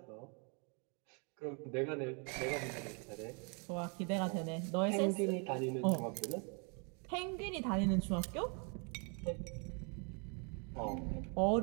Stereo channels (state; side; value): quieter; left; 36.3 dB